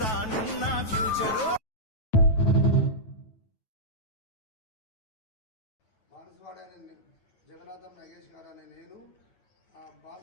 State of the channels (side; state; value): right; late; 9.3 ms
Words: రానున్న ఫ్యూచరు. బాన్సువాడ అనే జగన్నాథం నగేష్ గారు అనే నేను